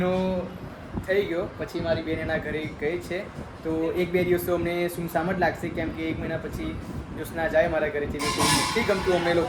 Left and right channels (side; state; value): both; identical; correlation 1.00